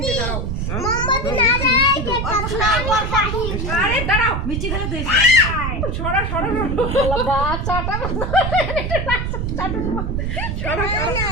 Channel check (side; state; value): right; noise; rumble, 2 dB below the sound